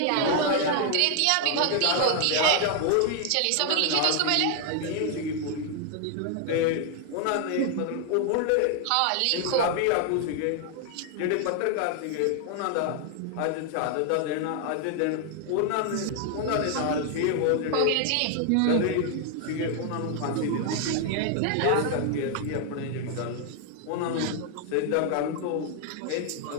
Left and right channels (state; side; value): different; both; correlation 0.00